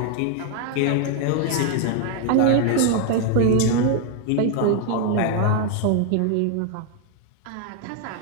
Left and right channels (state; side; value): different; both; correlation 0.00